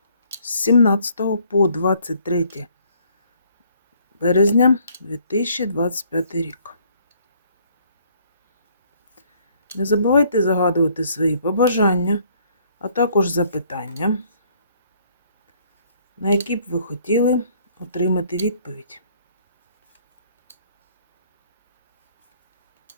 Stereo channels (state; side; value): inverted; both; correlation -0.63